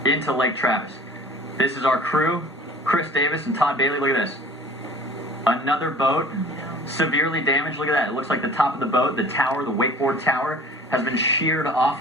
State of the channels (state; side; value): normal; both; correlation 0.46